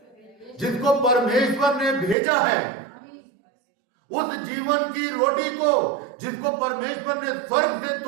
जिसको परमेश्वर ने भेजा है, उस जीवन की रोटी को जिसको परमेश्वर ने स्वर्ग से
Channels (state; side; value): drops out; left; at 2.1 s